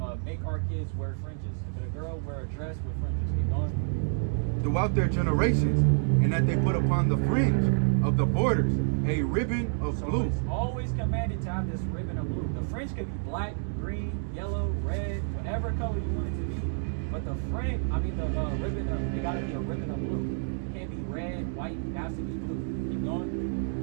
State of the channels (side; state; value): left; silent; digital silence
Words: make our kids wear fringes. If it's a girl, wear a dress with fringes. Keep going. Throughout their generations, and that they put upon the fringe of the borders a ribbon of So blue. it's always commanded to have this ribbon of blue. The fringe could be black, green, yellow, red, whatever color you want it to be. But the fringe, the ribbon, it gotta be a ribbon of blue. It can't be red, white, it has to be blue. Keep